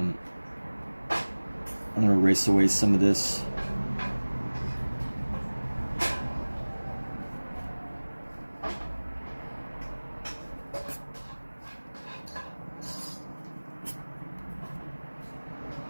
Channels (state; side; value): inverted; both; correlation -1.00